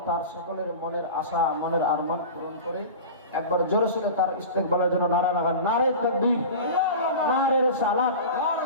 তার সকলের মনের আশা, মনের আরমান পূরণ করে। একবার জোরে সোরে তার ইস্তেকবালের জন্য নারা লাগান, নারে তাকবীর, নারে রিসালাত।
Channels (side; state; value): both; inverted; correlation -0.32